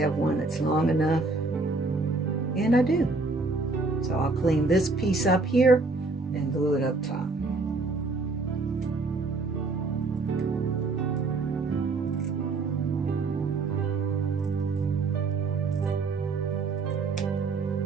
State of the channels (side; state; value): left; quieter; 3.6 dB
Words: one that's long enough, and I do. So I'll clean this piece up here and glue it up top.